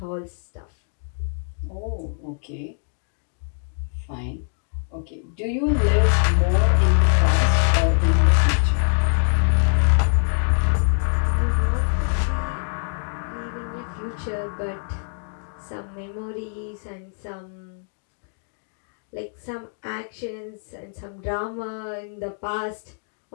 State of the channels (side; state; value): right; silent; digital silence